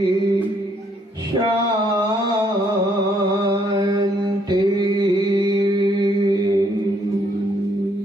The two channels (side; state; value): both; normal; correlation 0.69